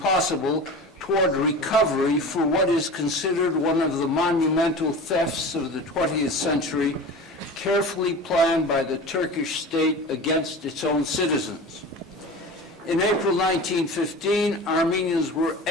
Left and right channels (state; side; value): normal; both; correlation 0.34